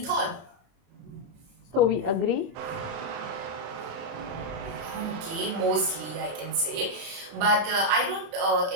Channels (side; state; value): left; late; 27 ms